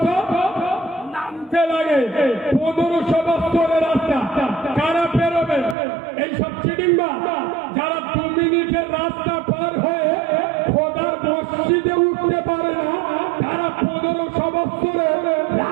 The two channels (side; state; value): left; drops out; at 5.8 s